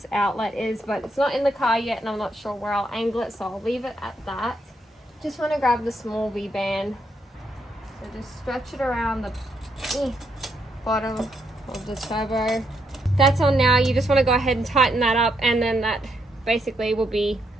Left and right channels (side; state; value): both; normal; correlation 0.78